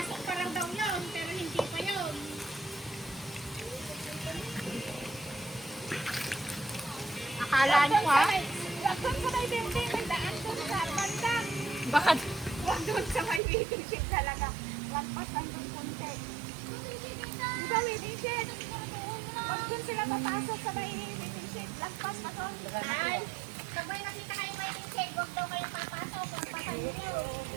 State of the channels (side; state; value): left; drops out; at 13.4 s